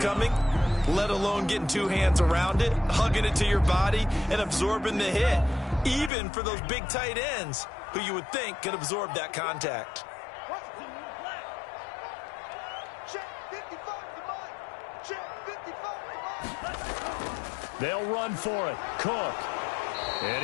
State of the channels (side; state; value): right; drops out; at 6.1 s